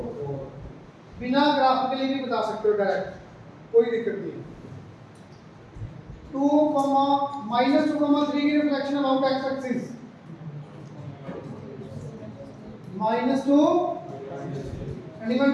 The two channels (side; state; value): both; identical; correlation 1.00